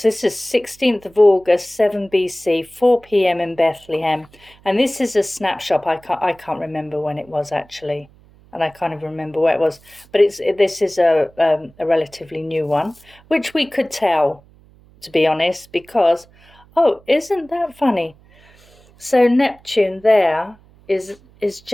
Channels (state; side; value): noise; right; hum, 28 dB below the sound